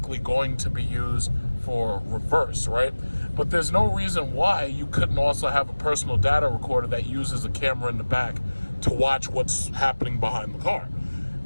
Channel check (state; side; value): inverted; both; correlation -1.00